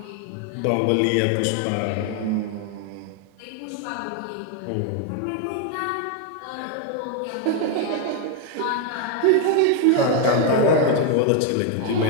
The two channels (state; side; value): different; both; correlation 0.01